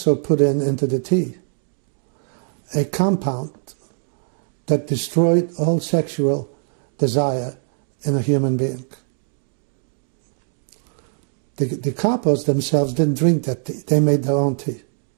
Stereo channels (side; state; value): left; silent; 64 dB below the other